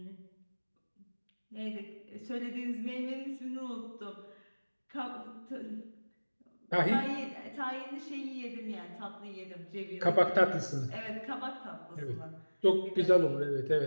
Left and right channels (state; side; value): inverted; both; correlation -1.00